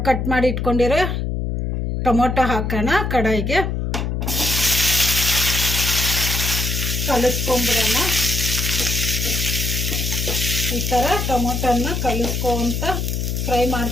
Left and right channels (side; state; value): left; noise; hum, 1 dB below the sound